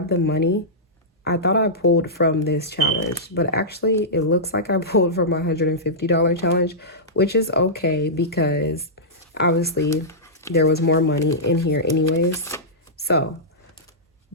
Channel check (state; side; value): normal; both; correlation -0.14